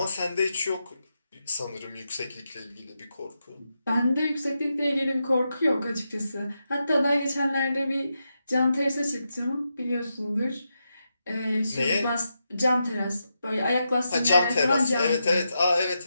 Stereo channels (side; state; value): both; inverted; correlation -0.86